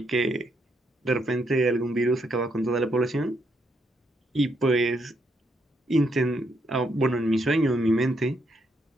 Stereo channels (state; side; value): normal; both; correlation 0.76